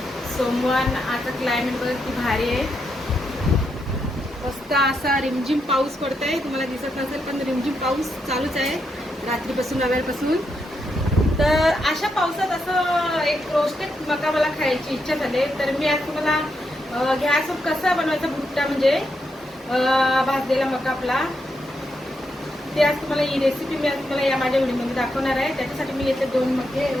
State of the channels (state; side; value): normal; both; correlation 0.82